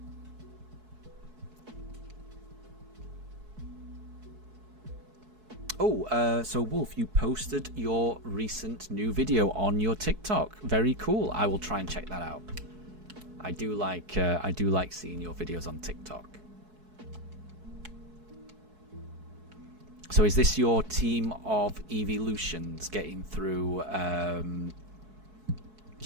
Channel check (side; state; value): left; late; 4.6 ms